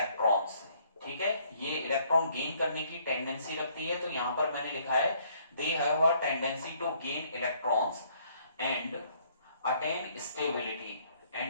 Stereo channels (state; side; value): inverted; both; correlation -0.64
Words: ठीक है, ये इलेक्ट्रॉन गेन करने की टेंडेंसी रखती है। तो यहां पर मैंने लिखा है they have a tendency to gain electrons and attain